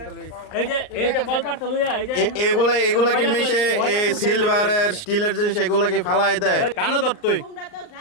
এগুলা কি মেশে সিলভারের স্টিলের জিনিস এগুলা কি ফালাই দেয়? কানা ধর তুই,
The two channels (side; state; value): right; late; 38 ms